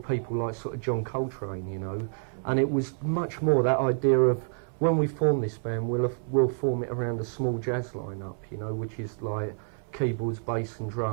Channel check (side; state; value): left; silent; 59 dB below the other